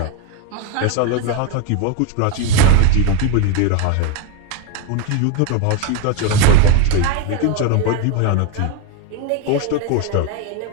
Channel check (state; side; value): different; both; correlation 0.02